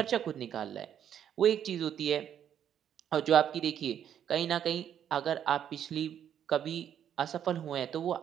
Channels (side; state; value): left; quieter; 9.5 dB